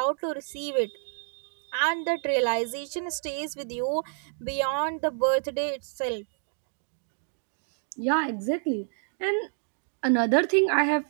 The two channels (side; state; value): left; silent; digital silence